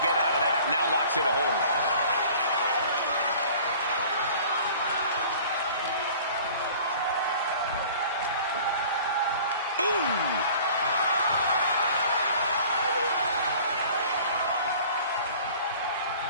get out of that. Now locks in a hold.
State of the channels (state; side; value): inverted; both; correlation -0.47